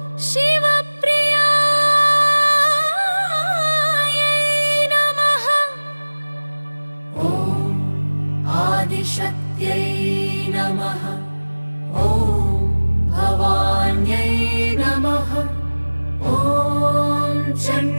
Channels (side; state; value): both; inverted; correlation -1.00